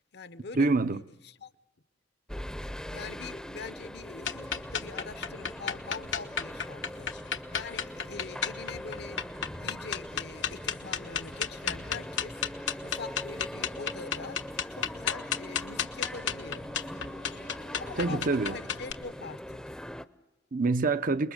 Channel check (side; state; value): both; normal; correlation 0.33